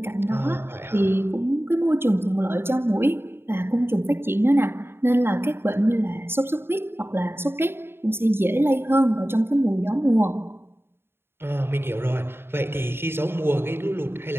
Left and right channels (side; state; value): left; late; 0.11 ms